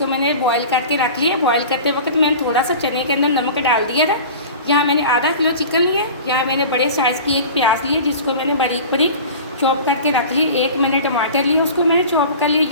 मैंने बॉयल करके रख लिया। बॉयल करते वक्त मैंने थोड़ा सा चने के अंदर नमक डाल दिया था। यहाँ मैंने आधा किलो चिकन लिया। यहाँ मैंने बड़े साइज़ की एक प्याज ली, जिसको मैंने बारीक बारीक चॉप करके रख ली। 1 मैंने टमाटर लिया, उसको मैंने चॉप कर लिया।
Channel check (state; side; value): inverted; both; correlation -0.37